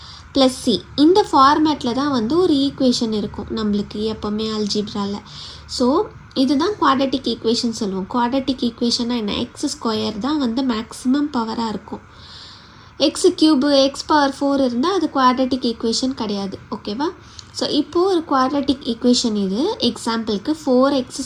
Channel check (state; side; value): identical; both; correlation 1.00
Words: + c இந்த ஃபார்மேட்டில் தான் ஒரு ஈக்குவேஷன் இருக்கும் நம்மளுக்கு எப்போவுமே அல்ஜிப்ராவில். ஸோ இதுதான் குவாட்ரட்டிக் ஈக்குவேஷன் சொல்லுவோம். குவாட்ரட்டிக் ஈக்குவேஷன்னா என்ன? x² தான் மேக்ஸிமம் பவராக இருக்கும். x³ x⁴ இருந்தால் அது குவாட்ரட்டிக் ஈக்குவேஷன் கிடையாது. ஓகேவா? ஸோ இப்போது ஒரு குவாட்ரட்டிக் ஈக்குவேஷன் இது. எக்ஸாம்பிளுக்கு 4x²